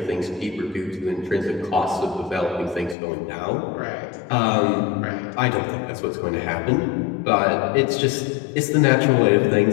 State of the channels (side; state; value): right; drops out; at 3.0 s